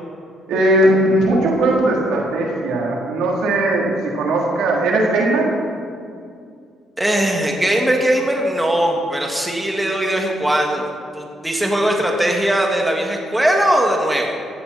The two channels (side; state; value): both; normal; correlation 0.76